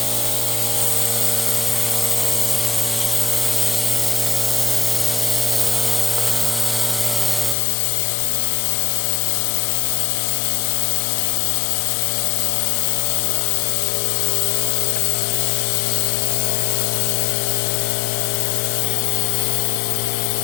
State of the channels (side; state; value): right; drops out; at 7.6 s